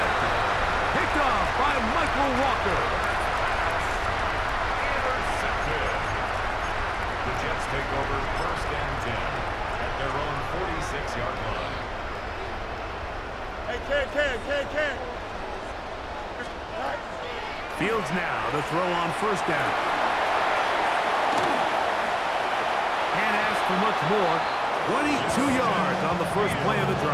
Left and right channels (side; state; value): both; identical; correlation 1.00